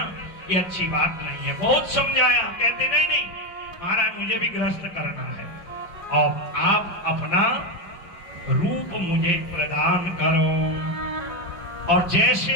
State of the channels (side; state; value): right; late; 5.4 ms